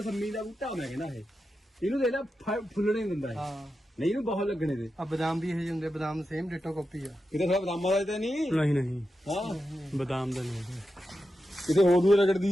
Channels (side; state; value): both; normal; correlation 0.89